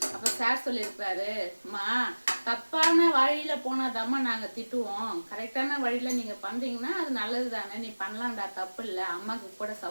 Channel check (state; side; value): inverted; both; correlation -1.00